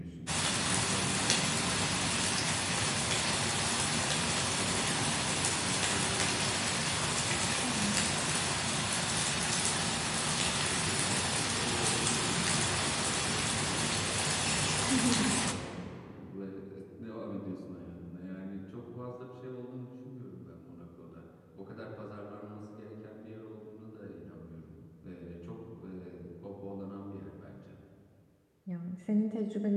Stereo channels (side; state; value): both; identical; correlation 1.00